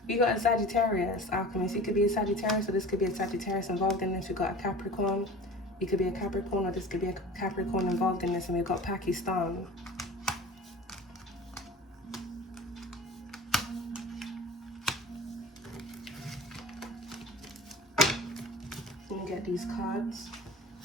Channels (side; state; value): both; normal; correlation 0.39